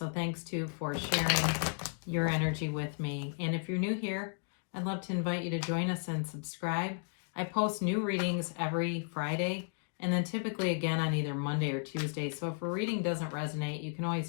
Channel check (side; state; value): right; silent; 55 dB below the other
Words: thanks too for sharing your energy with me. And if you're new here, I'd love to invite you to join us and subscribe. I post new readings every Friday, and then typically again on either Monday or Tuesday. So if a reading doesn't resonate, you can